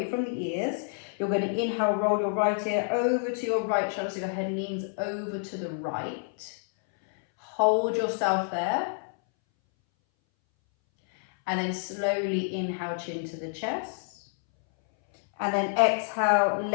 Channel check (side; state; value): right; silent; 59 dB below the other